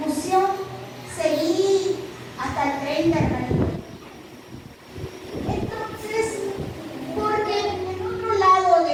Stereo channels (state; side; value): identical; both; correlation 1.00